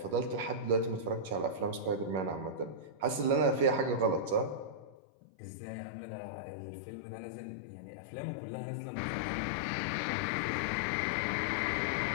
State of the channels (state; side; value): drops out; right; at 5.0 s